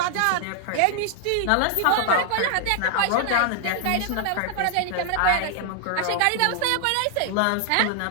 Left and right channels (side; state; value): both; different; correlation 0.00